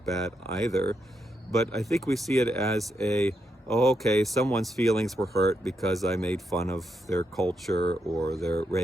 bad either, but I think we see it as okay, someone's feelings were hurt because I made fun of their culture or their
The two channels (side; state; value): both; normal; correlation 0.81